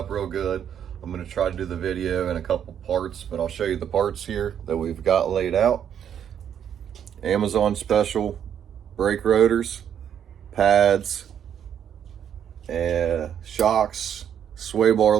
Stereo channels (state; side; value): quieter; left; 8.9 dB